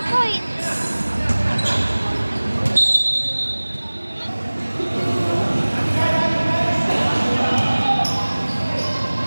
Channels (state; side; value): inverted; both; correlation -1.00